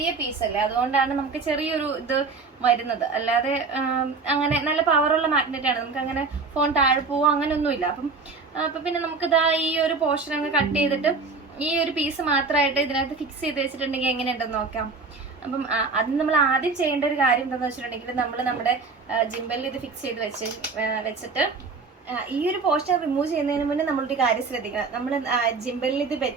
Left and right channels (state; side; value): quieter; left; 4.3 dB